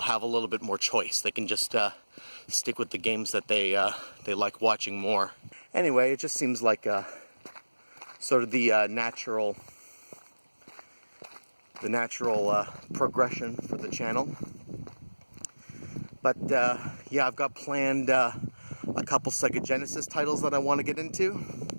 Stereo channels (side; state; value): both; inverted; correlation -1.00